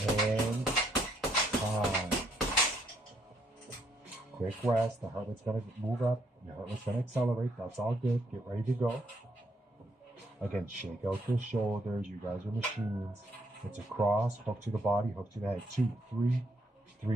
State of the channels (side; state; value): both; normal; correlation 0.72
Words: And time. Quick rest. The heart rate's going to move up. Your heart rate's going to accelerate. That's all good. Get ready to go. Again, shake out the shoulders. You guys are machines. It's a cross. Hook to the body. Hook to the head. 2, 3.